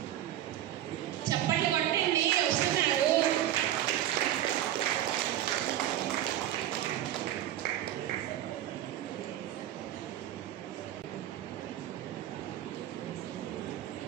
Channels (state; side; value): quieter; left; 12.4 dB